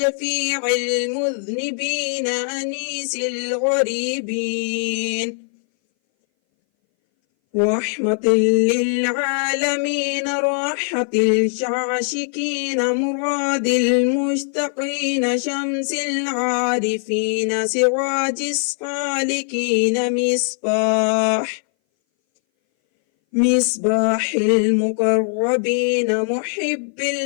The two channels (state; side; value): silent; right; 60 dB below the other